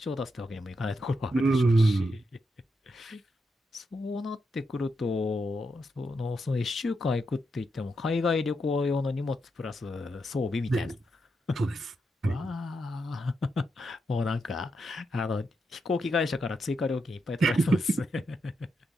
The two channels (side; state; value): both; normal; correlation 0.84